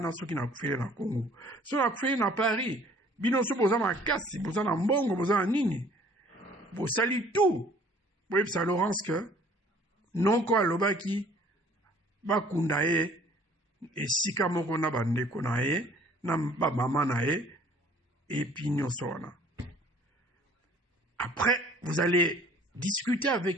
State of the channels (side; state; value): both; normal; correlation 0.55